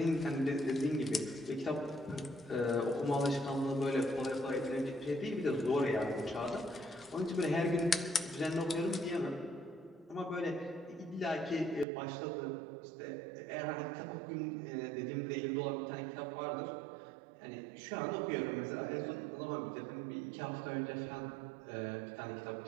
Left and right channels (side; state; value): left; drops out; at 11.9 s